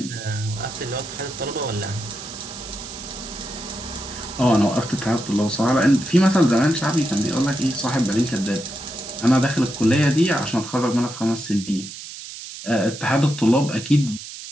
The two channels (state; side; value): noise; right; hiss, 12 dB below the sound